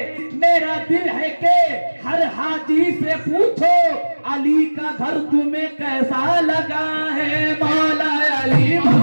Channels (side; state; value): both; inverted; correlation -1.00